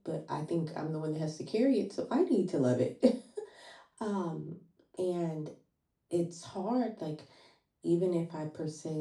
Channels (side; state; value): both; identical; correlation 1.00